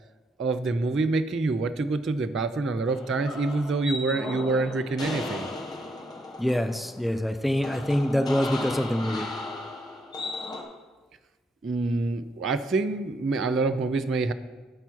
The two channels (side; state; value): both; normal; correlation 0.75